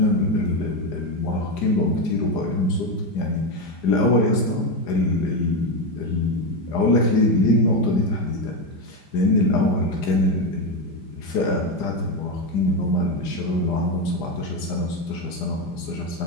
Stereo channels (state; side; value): late; right; 5.0 ms